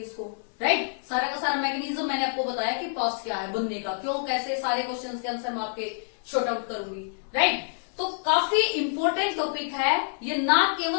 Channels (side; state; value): right; silent; 59 dB below the other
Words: राइट। सारा का सारा मैकेनिज्म मैंने आपको बताया कि पास्ट क्या है, बनने का क्यों, कैसे, सारे क्वेश्चंस के आंसर मैं आपके शॉर्ट आउट करूंगी, राइट। तो काफी इंपॉर्टेंट टॉपिक है ये, ना